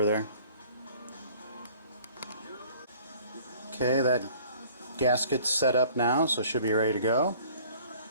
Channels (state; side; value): inverted; both; correlation -0.52